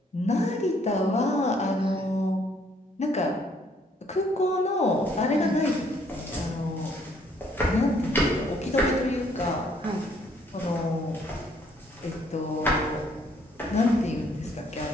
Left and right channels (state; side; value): normal; both; correlation 0.65